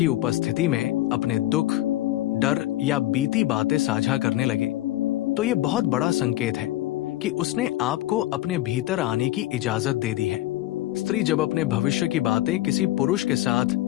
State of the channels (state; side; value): quieter; right; 15.7 dB